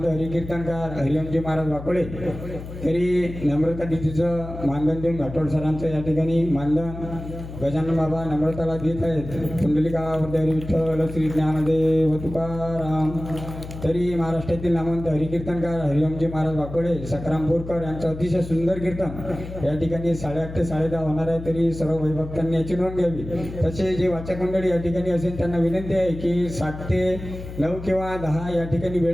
हरिकीर्तनकार हरिओमजी महाराज वाकोळे. तरी नम्रता दिदीचं मानधन देऊन घाटोळ सरांचं या ठिकाणी मानधन गजानन बाबा नम्रताला देत आहेत. गावावर विठ्ठल श्री ज्ञानदेव तुकाराम. तरी महाराष्ट्रातील नामवंत हरिकीर्तनकार हरिओमजी महाराज वाकोळे सकरामपूरकर यांचं अतिशय सुंदर कीर्तन या ठिकाणी 8:30 ते 10:30 होणार आहे. तरी सर्व वैभक्तांनी याची नोंद घ्यावी. तसे जे वाचक मंडळी या ठिकाणी असेल त्यांना विनंती आहे की 7 ते 9 किंवा 10 या ठिकाणी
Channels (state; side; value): noise; left; hum, 11 dB below the sound